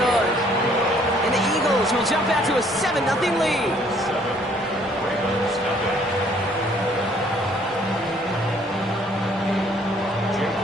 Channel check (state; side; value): normal; both; correlation 0.62